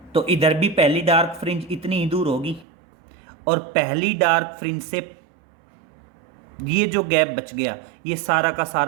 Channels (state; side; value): drops out; left; at 2.7 s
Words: तो इधर भी पहली डार्क फ्रिंज इतनी ही दूर होगी, और पहली डार्क फ्रिंज से ये जो गैप बच गया ये सारा का